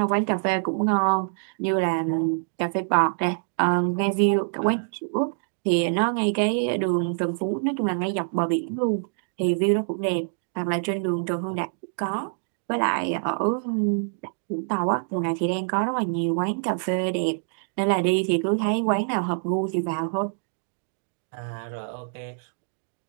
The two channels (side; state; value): left; silent; digital silence